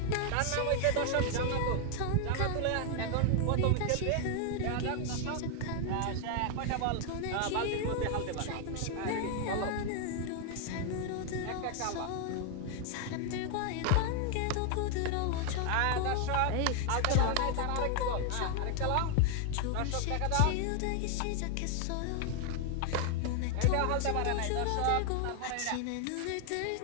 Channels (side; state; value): both; different; correlation 0.00